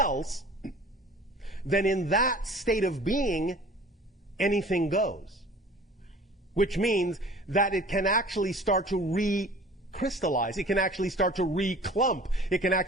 Then in that state of being, anything goes. Which means that it can actually start to recrystallize. It can actually start to reclump. It can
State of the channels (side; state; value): both; normal; correlation 0.45